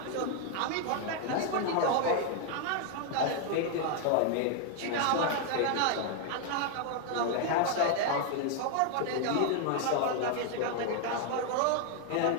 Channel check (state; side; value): different; both; correlation 0.00